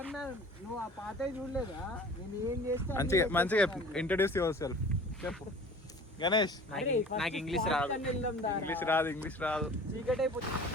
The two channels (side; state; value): both; normal; correlation 0.44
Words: నువ్వు ఆ పాత చూడలేదా? నేను ఏం చేస్తా మంచిగా ఇంట్రడ్యూస్ యువర్ సెల్ఫ్ చెప్పు. గణేష్, నాకు ఇంగ్లీష్ రాదు. ఇంగ్లీష్ రాదు. చీకటి అయిపోతుంది.